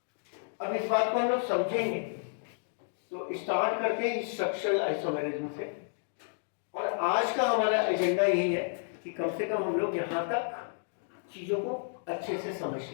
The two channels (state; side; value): silent; right; digital silence